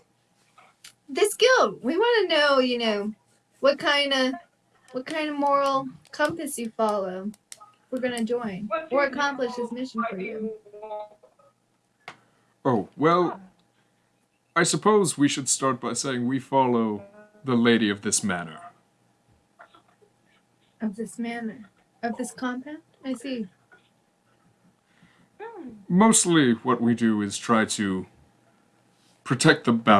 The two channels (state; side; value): identical; both; correlation 1.00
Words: This guild, we want to know, what kind of moral compass you follow. We're gonna join or accomplish this mission for you. Oh, well, I suppose we should start by saying we follow the lady of this manor. Of this manor, of this compound. I see. Mostly what we do is try to protect the